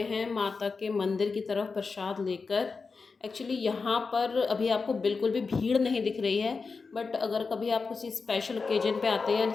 हैं माता के मंदिर की तरफ प्रसाद लेकर। एक्चुअली यहाँ पर अभी आपको बिल्कुल भी भीड़ नहीं दिख रही है, बट अगर कभी आप किसी स्पेशल ओकेजन पे आते हैं,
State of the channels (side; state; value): right; quieter; 4.6 dB